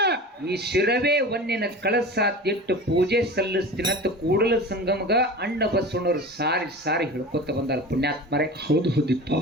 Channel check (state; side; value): normal; both; correlation 0.34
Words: ಈ ಶಿರವೇ ಒನ್ನಿನ ಕಳಸ ತಿಟ್ಟು ಪೂಜೆ ಸಲ್ಲಿಸ್ತೀನಂತ ಕೂಡಲ ಸಂಗಮಗ ಅಣ್ಣ ಬಸವಣ್ಣವ್ರು ಸಾರಿ ಸಾರಿ ಹೇಳ್ಕೊತ ಬಂದಾರ ಪುಣ್ಯಾತ್ಮರೇ. ಹೌದು ಹೌದಿಪ್ಪ.